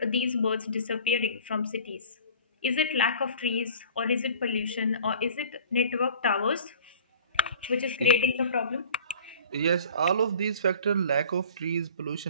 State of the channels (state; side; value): inverted; both; correlation -0.46